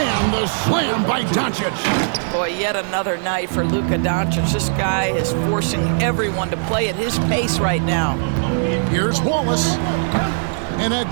the slam by Doncic. Boy, yet another night for Luka Doncic. This guy is forcing everyone to play at his pace right now. Here's Wallace. And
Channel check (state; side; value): silent; left; 59 dB below the other